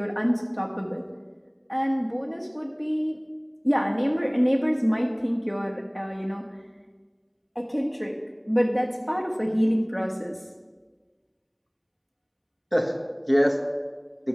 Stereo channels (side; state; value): both; identical; correlation 1.00